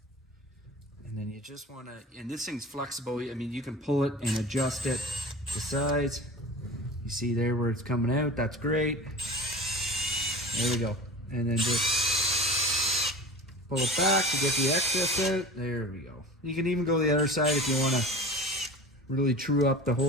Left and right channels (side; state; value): both; normal; correlation 0.36